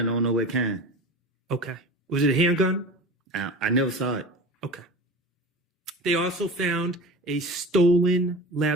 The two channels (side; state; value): both; normal; correlation 0.34